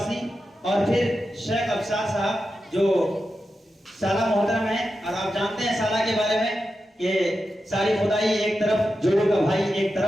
और फिर शेख अफसार साहब जो साला मोहतरम है, और आप जानते हैं साला के बारे में कि सारी खुदाई एक तरफ, जोड़ों का भाई एक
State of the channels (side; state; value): both; normal; correlation 0.90